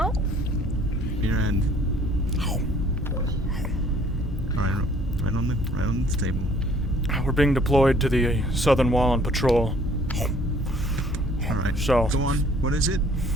Your hand. Alright, right on the table. We're being deployed to the southern wall on patrol. Alright. So. Go on. What is it?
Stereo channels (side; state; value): both; normal; correlation 0.58